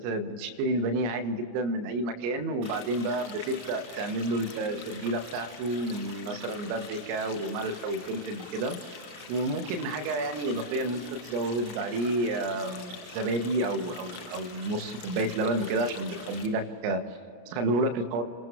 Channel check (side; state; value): left; late; 33 ms